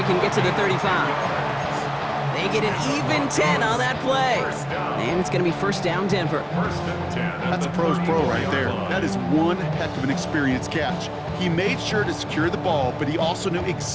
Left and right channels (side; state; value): both; identical; correlation 1.00